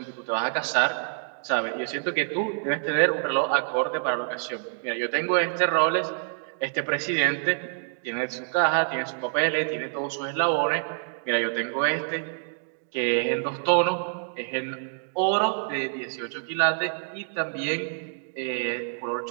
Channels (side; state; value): left; silent; digital silence